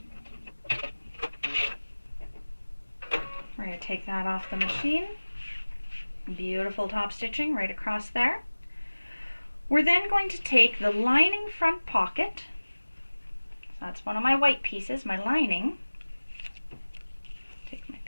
We're going to take that off the machine. Beautiful top stitching right across there. We're then going to take the lining front pocket. So that's one of my white pieces, my lining. Take my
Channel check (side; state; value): both; inverted; correlation -1.00